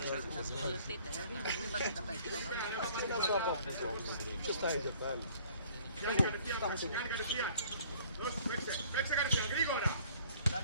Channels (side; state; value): both; inverted; correlation -0.56